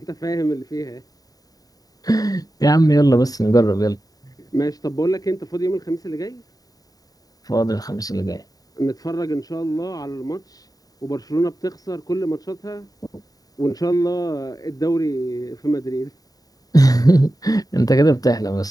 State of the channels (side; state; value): right; late; 0.18 ms